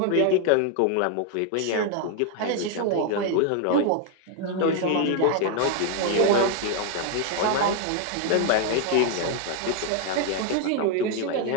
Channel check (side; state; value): both; different; correlation 0.00